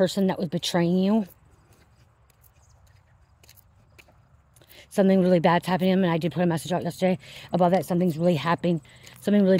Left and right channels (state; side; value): identical; both; correlation 1.00